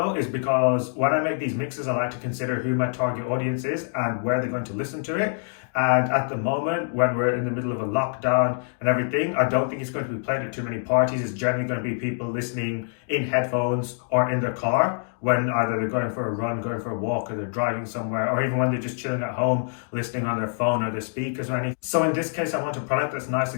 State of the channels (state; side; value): silent; right; digital silence